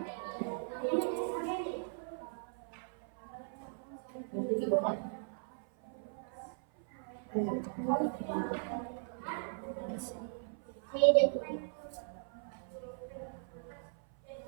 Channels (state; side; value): silent; left; 52 dB below the other